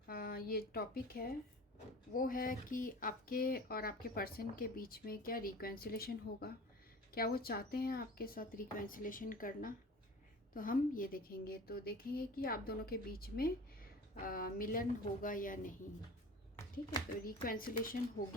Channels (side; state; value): both; normal; correlation 0.38